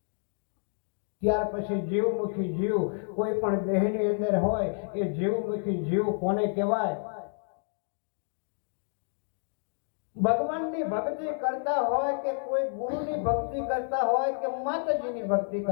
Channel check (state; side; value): silent; right; digital silence